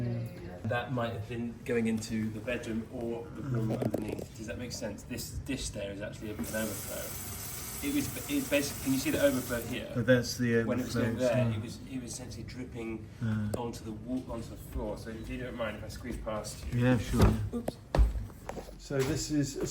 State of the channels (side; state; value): both; identical; correlation 1.00